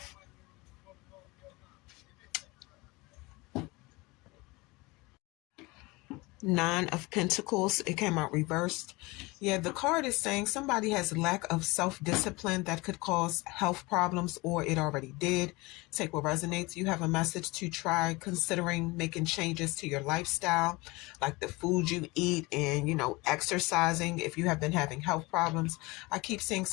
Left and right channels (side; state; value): right; quieter; 23.6 dB